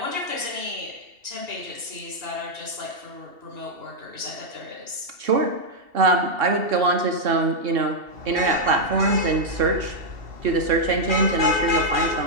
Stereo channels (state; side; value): late; left; 2.7 ms